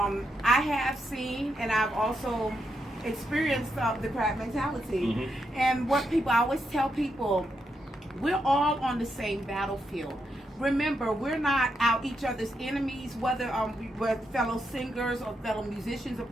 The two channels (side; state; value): both; normal; correlation 0.82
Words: have seen and I've also experienced the crab mentality. And what I always tell people, we're all on the same battlefield. Remember, we're not out each other's enemies, whether we're fellow singers or fellow musicians or